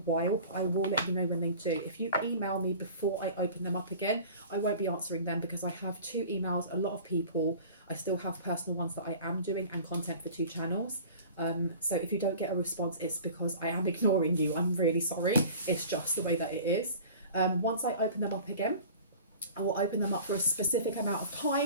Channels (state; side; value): inverted; both; correlation -0.42